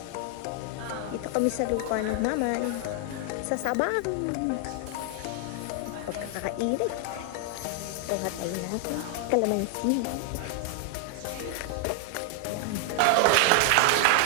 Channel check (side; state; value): both; different; correlation 0.00